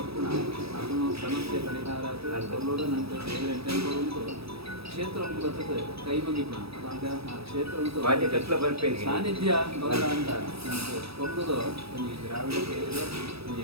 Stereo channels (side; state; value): left; late; 0.77 ms